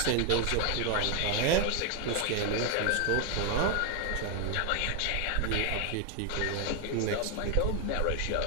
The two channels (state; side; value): different; both; correlation 0.01